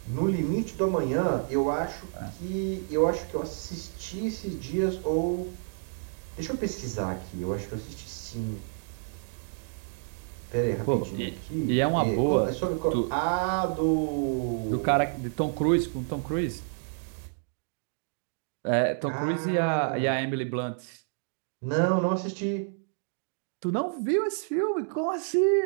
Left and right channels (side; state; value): left; silent; digital silence